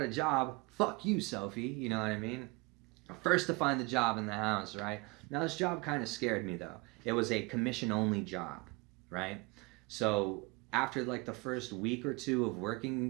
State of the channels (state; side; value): quieter; left; 26.9 dB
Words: a job. Fuck you, Sophie. You know what I mean? First to find the job in the house, right? Now this job kind of scared me though. It was a commission only job, right? So after like the first week or two of